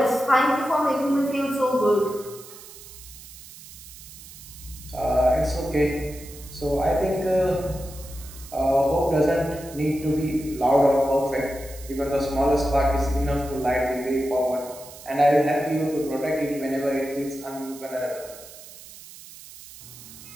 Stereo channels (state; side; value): noise; right; hiss, 17 dB below the sound